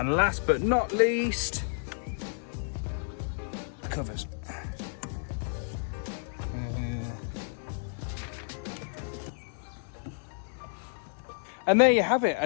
last but not least, the covers. And there you have it, a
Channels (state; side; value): silent; right; 57 dB below the other